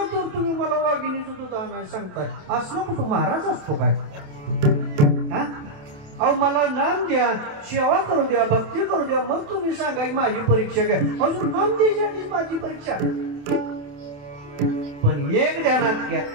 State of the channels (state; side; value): late; left; 28 ms